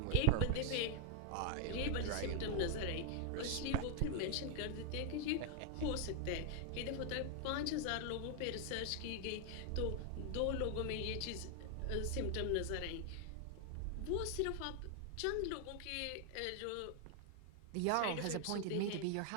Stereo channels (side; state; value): both; different; correlation 0.00